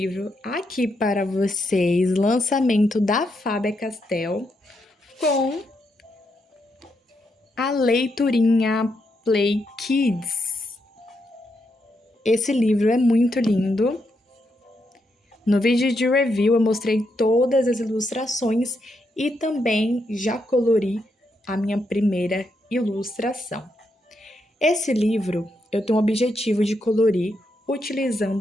aqui para vocês, lançamento da Faber-Castell com a leiturinha Play Kids. Esse livro é muito lindo. No vídeo de review eu mostrei todas as ilustrações e também já colori a minha primeira ilustração. Esse livro eu tenho o objetivo de colorir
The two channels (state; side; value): normal; both; correlation 0.81